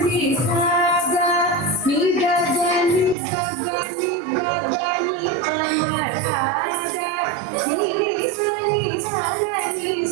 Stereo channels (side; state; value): left; drops out; at 3.2 s